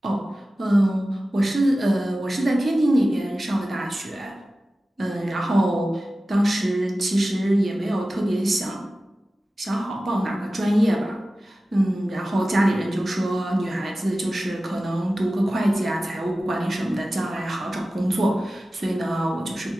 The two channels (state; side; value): normal; both; correlation 0.95